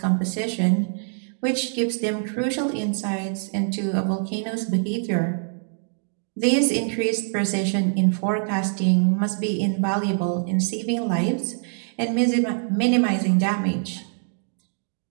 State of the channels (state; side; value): silent; left; 62 dB below the other